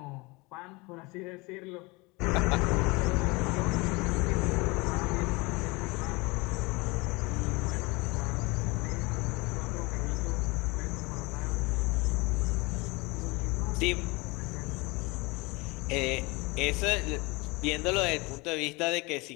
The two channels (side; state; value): right; quieter; 25.3 dB